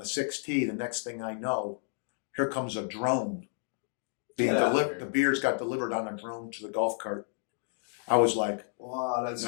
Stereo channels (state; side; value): silent; right; 57 dB below the other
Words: 6th tee, the next thing I know, here comes a drone being Get out of delivered. here. The beers got delivered on a drone to the golf cart. I was like, Wow, that's